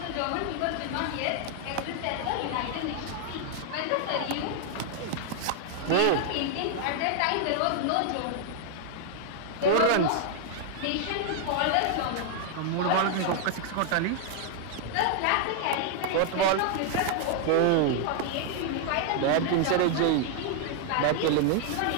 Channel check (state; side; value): different; both; correlation 0.00